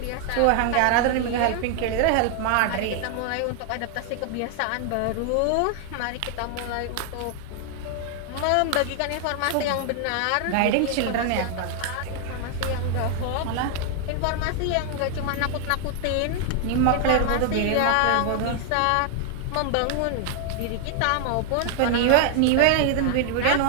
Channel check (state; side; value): different; both; correlation 0.00